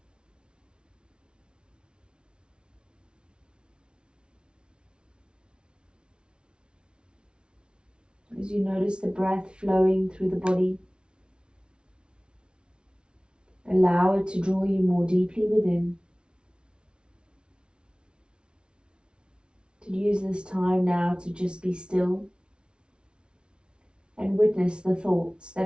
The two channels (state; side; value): late; left; 0.057 ms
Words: As you notice the breath flowing through the body, allow it to draw you more deeply within. To use this time now to just be still and witness the thoughts